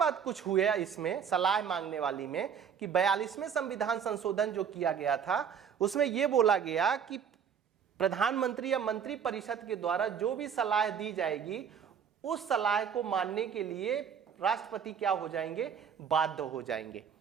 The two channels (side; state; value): left; quieter; 7.6 dB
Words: कुछ हुआ इसमें सलाह मांगने वाली में कि 42वें संविधान संशोधन जो किया गया था उसमें यह बोला गया कि प्रधानमंत्री या मंत्री परिषद के द्वारा जो भी सलाह दी जाएगी उस सलाह को मानने के लिए राष्ट्रपति क्या हो जाएंगे? बाध्य हो जाएंगे।